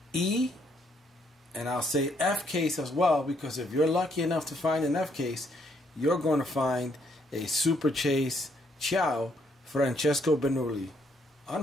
E and I'll say F case as well, because if you're lucky enough to find an F case, you're going to find a Super Chase Ciao Francesco Bernoulli.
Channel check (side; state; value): both; normal; correlation 0.71